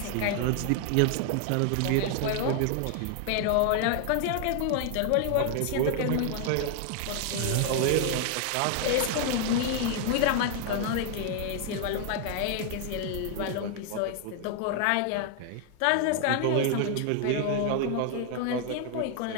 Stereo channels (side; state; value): both; different; correlation 0.00